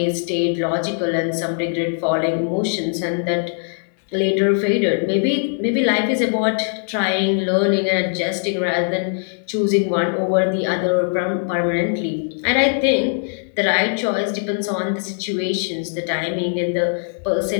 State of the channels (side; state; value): right; silent; 65 dB below the other